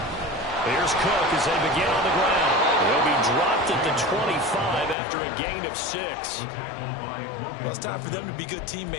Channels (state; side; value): drops out; right; at 5.0 s